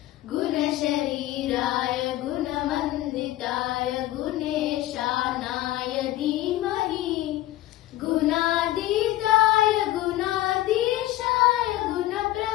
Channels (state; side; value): quieter; right; 15.6 dB